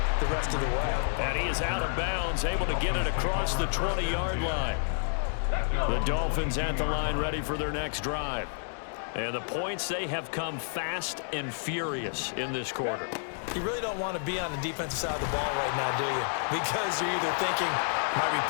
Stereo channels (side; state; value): right; silent; digital silence